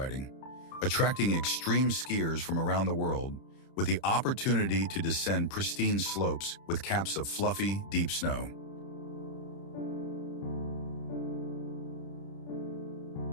attracting extreme skiers from around the world, with the opportunity to descend pristine slopes with caps of fluffy, deep snow.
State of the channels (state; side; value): late; right; 30 ms